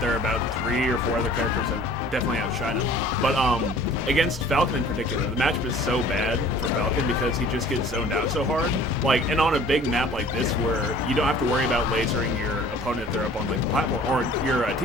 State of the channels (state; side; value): normal; both; correlation 0.49